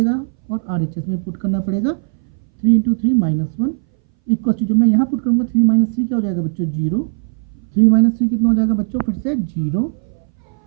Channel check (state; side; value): silent; left; 62 dB below the other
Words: और आर एच एस में भी पुट करना पड़ेगा। Three into three minus one equals to, जब मैं यहाँ पुट करूँगा थ्री माइनस थ्री क्या हो जाएगा बच्चों जीरो, थ्री माइनस थ्री कितना हो जाएगा बच्चों फिर से जीरो।